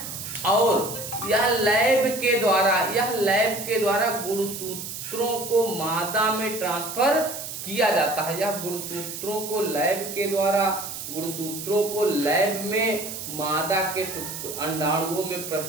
और यह लैब के द्वारा गुणसूत्रों को मादा में ट्रांसफर किया जाता है। यह गुणसूत्रों को लैब में मादा के अंडाणुओं में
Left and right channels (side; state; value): right; noise; hiss, 8 dB below the sound